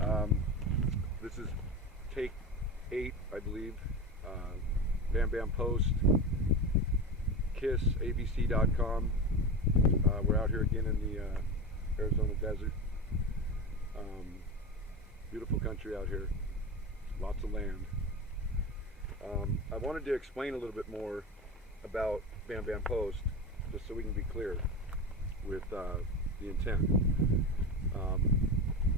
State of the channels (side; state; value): both; normal; correlation 0.24